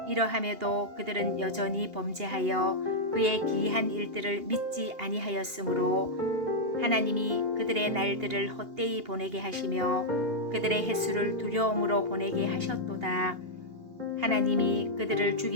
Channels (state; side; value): late; left; 2.8 ms